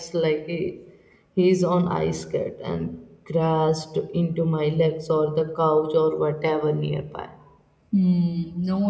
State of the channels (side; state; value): both; identical; correlation 1.00